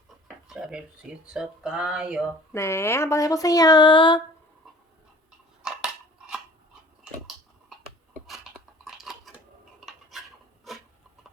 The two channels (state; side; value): normal; both; correlation 0.48